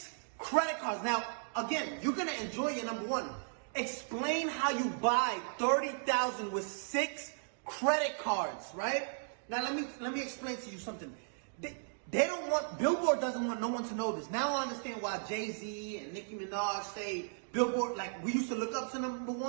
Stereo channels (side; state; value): left; silent; digital silence